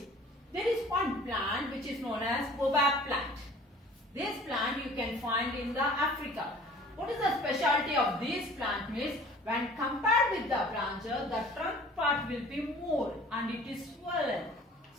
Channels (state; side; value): normal; both; correlation 0.48